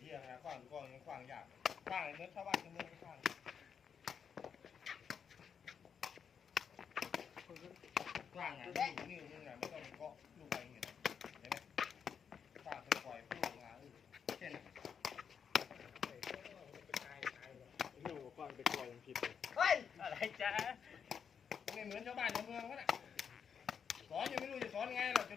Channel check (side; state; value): right; quieter; 7.1 dB